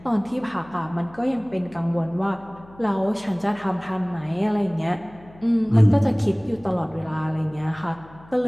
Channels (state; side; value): noise; left; hum, 23 dB below the sound